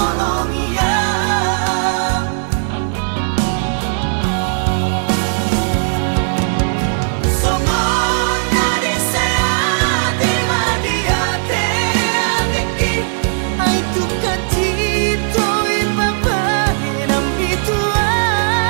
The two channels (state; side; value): silent; left; digital silence